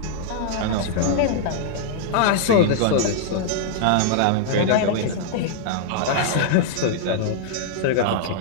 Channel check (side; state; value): both; different; correlation -0.01